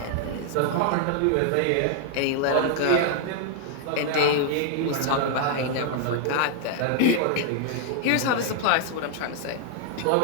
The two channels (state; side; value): different; both; correlation 0.00